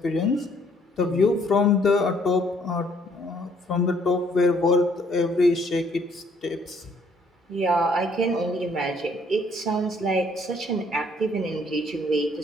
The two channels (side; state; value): both; normal; correlation 0.64